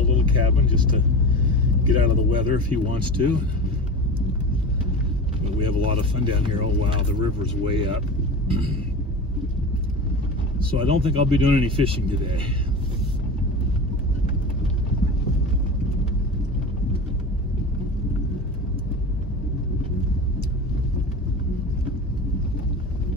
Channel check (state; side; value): normal; both; correlation 0.29